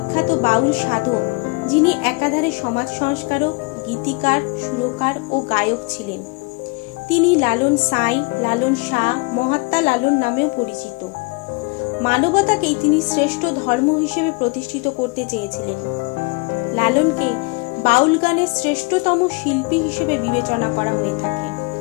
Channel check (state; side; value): quieter; right; 28.6 dB